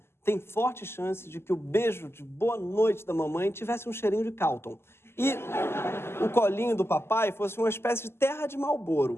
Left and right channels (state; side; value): late; right; 0.12 ms